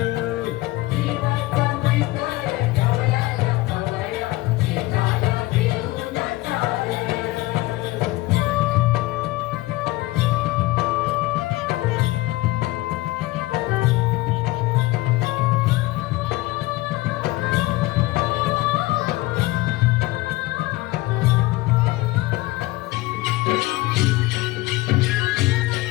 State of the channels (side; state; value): right; quieter; 19.6 dB